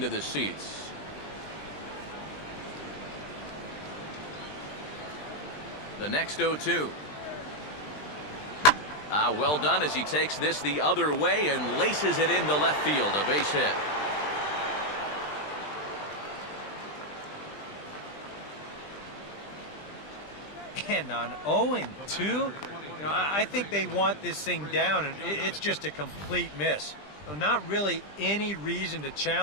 the seats. The next 0-2. Well done as he takes this the other way and laces it into left field, a base hit. And on 0-2, You know, I think they want this thing down, and it's just a complete miss. So not really any reason to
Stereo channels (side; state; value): right; late; 20 ms